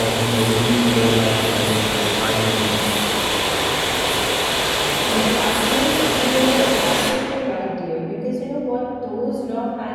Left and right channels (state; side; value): identical; both; correlation 1.00